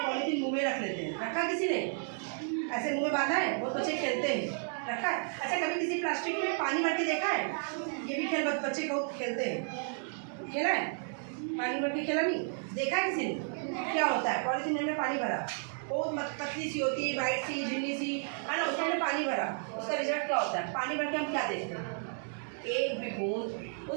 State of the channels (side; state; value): left; silent; 56 dB below the other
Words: पॉलीथीन मुँह में रख लेते हैं। रखा किसी ने? ऐसे मुँह में बांधा है, बहुत बच्चे खेलते हैं, रखा है। अच्छा, कभी किसी प्लास्टिक में पानी भर के देखा है? ये भी खेल बच्चे बहुत खेलते हैं, खेला है? पानी भर के खेला नहीं? देखा है किसी ने? क्या होता है? पॉलीथीन में पानी भरा, बहुत पतली सी होती है, वाइट सी झिल्ली सी, है ना, उसमें पानी भरा, उसका रिजल्ट क्या होता है? पानी भर के हम क्या देखते हैं? एक भी बूंद